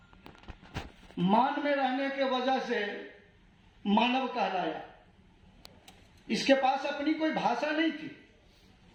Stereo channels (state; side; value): identical; both; correlation 1.00